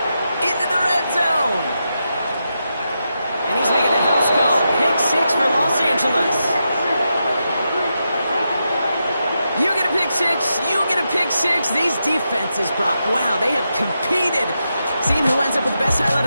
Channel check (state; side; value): inverted; both; correlation -0.86